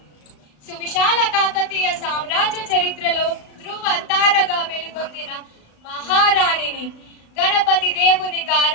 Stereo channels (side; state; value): right; late; 37 ms